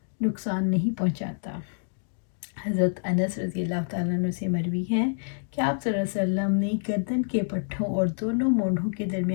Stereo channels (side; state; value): right; silent; digital silence